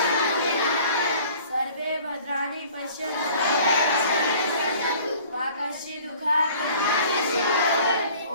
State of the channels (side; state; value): both; inverted; correlation -0.50